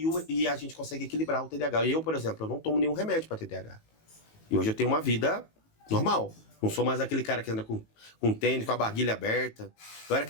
e a gente consegue equilibrar o TDAH. Eu, por exemplo, eu não tomo nenhum remédio para TDAH. E hoje eu tenho uma vida normal. Não sou mais aquele cara que anda com tênis, com a barguilha aberta. Eu era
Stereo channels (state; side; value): late; right; 18 ms